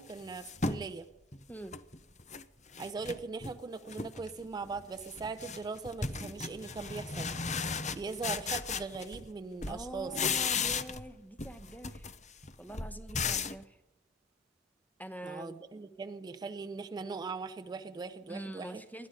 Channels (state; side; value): normal; both; correlation 0.41